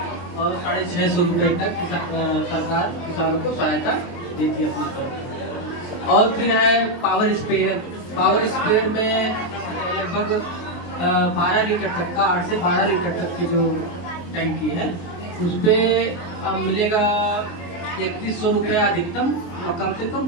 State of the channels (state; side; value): late; right; 23 ms